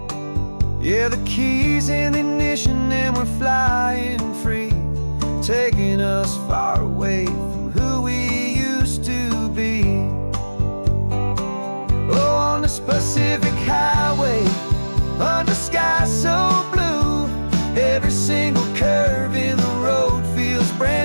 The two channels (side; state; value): both; inverted; correlation -1.00